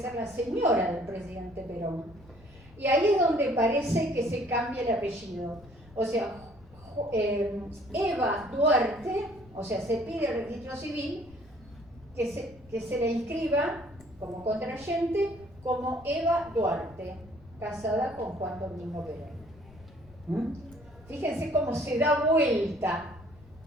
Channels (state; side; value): noise; left; rumble, 23 dB below the sound